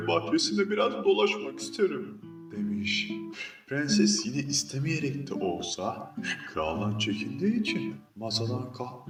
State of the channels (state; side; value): identical; both; correlation 1.00